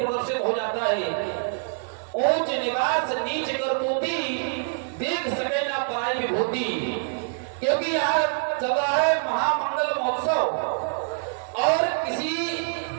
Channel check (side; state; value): left; silent; digital silence